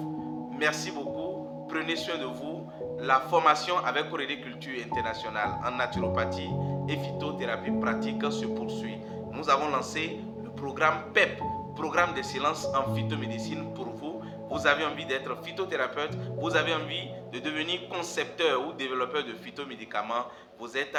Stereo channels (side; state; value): both; identical; correlation 1.00